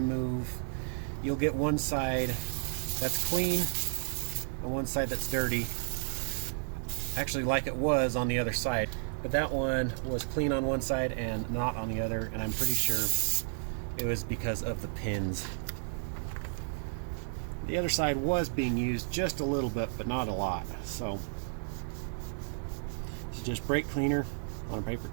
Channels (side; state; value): left; silent; digital silence